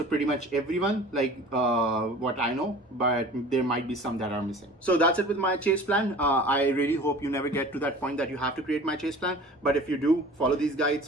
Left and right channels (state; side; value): normal; both; correlation 0.43